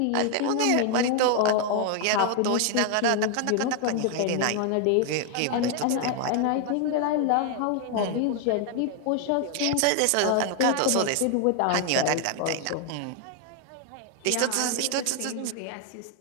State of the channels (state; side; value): different; both; correlation 0.00